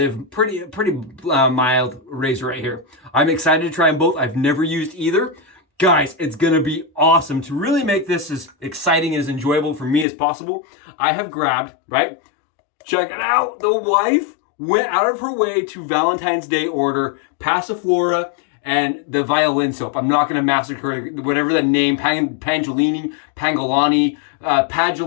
pretty mild razor right here. I'm excited to try them both. I've never used either. Guys, it's gonna be awesome. To really make this as exciting and as enjoyable for me as possible, I have grabbed, right? Check it out. The wife went out of her way to Valentine's Day order Passiflora and the violin soap. I'm not gonna massacre whatever the name, Pangolani,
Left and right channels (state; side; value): drops out; right; at 10.1 s